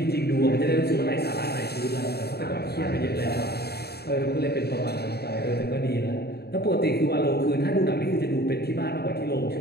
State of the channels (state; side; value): late; right; 0.47 ms